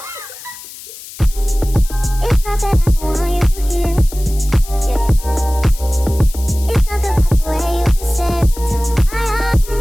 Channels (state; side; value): noise; left; hiss, 15 dB below the sound